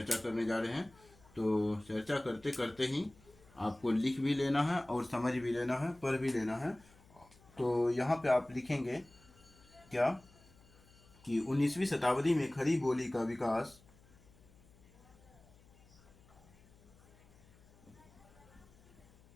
करने जा रहे हैं। तो चर्चा करते करते ही आपको लिख भी लेना है और समझ भी लेना है, पढ़ भी लेना है। तो यहाँ पे आप लिखेंगे क्या कि 19वीं शताब्दी में खड़ी बोली का विकास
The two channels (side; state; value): left; noise; hum, 26 dB below the sound